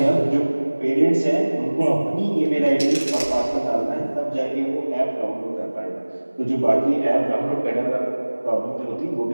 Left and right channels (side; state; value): both; inverted; correlation -1.00